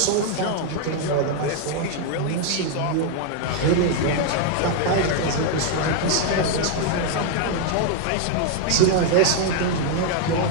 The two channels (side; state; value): both; different; correlation 0.00